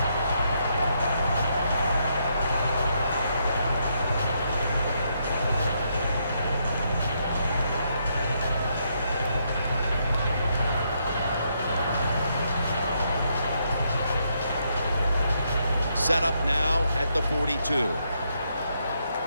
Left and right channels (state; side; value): inverted; both; correlation -0.77